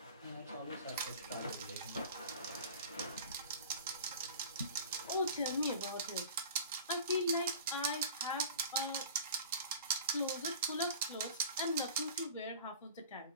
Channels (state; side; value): inverted; both; correlation -0.40